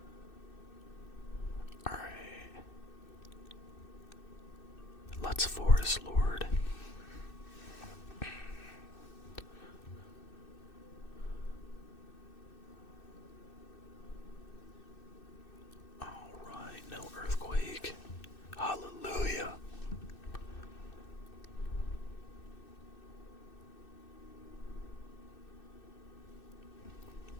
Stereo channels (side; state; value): right; late; 2.6 ms